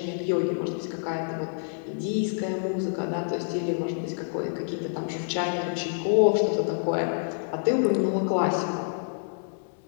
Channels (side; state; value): right; silent; digital silence